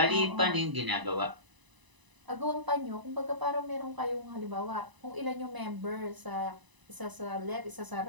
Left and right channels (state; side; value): late; left; 1.0 ms